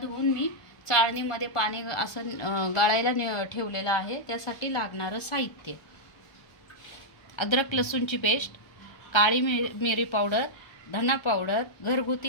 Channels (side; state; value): right; late; 1.3 ms